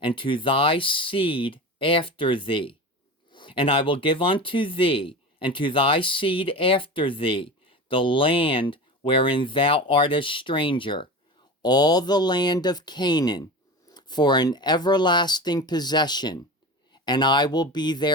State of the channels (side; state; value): both; normal; correlation 0.29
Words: and to thy seed after thee. And I will give unto thee, and to thy seed after thee, the land wherein thou art a stranger, all the land of Canaan, for an everlasting possession, and I will be